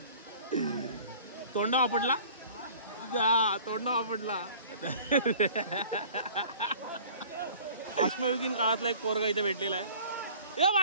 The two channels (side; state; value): both; inverted; correlation -0.48